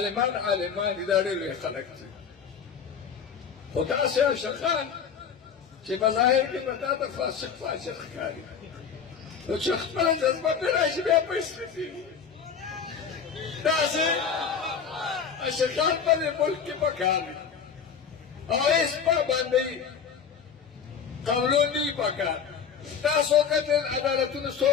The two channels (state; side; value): quieter; right; 6.9 dB